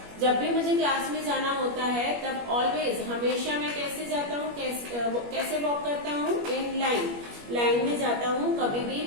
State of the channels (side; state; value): left; late; 21 ms